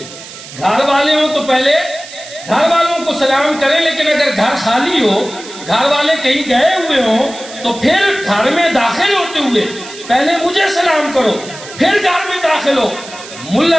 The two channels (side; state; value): right; noise; hiss, 15 dB below the sound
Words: گھر والے ہوں تو پہلے گھر والوں کو سلام کریں، لیکن اگر گھر خالی ہو، گھر والے کہیں گئے ہوئے ہوں تو پھر گھر میں داخل ہوتے ہوئے پہلے مجھے سلام کرو پھر گھر میں داخل ہو۔